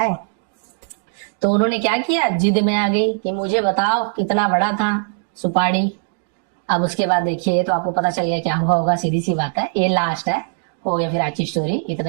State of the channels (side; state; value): left; silent; digital silence